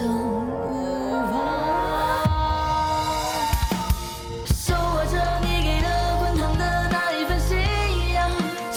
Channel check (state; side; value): identical; both; correlation 1.00